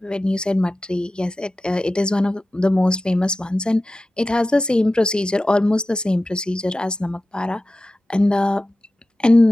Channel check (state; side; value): normal; both; correlation 0.94